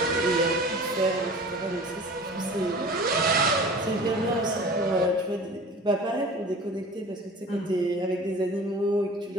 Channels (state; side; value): normal; both; correlation 0.41